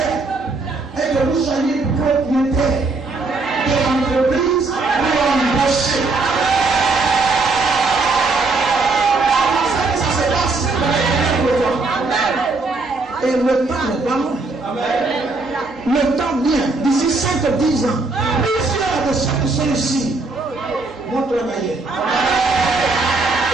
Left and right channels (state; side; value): quieter; left; 3.6 dB